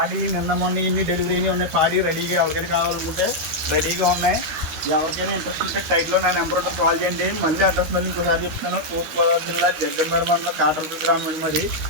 నిన్న మొన్న ఇన్ని డెలివరీ ఉన్నాయి. పాడి రెడీగా ఎవరికైనా కావాలనుకుంటే రెడీగా ఉన్నాయి. ఎవరికైనా ఇంట్రెస్ట్ ఉంటే టైట్లో నా నెంబర్ ఉంటే కాల్ చేయండి. మళ్ళీ అడ్రస్ మళ్ళీ ఇంకోసారి చెప్తున్నాను. తూర్పుగోదావరి జిల్లా జగ్గంపేట మండలం కాటరపల్లి గ్రామం మరి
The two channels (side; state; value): left; late; 13 ms